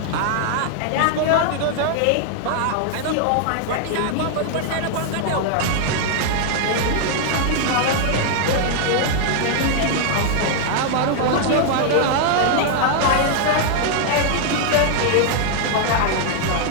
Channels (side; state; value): both; different; correlation 0.00